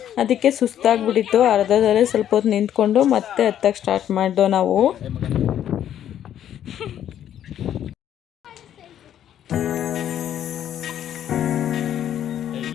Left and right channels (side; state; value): right; quieter; 10.5 dB